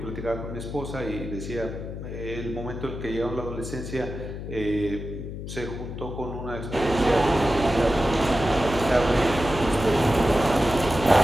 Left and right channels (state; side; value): noise; left; hum, 8 dB below the sound